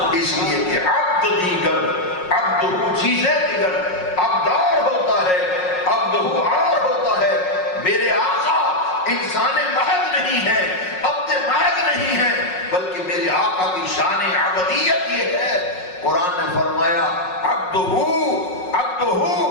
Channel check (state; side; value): late; right; 5.5 ms